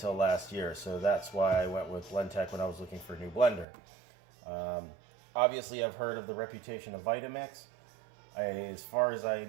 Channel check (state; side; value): drops out; left; at 3.7 s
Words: last year. So that's why I went with Blendtec when I was looking for a new blender. Obviously, I've heard of the reputation of Vitamix. As far as I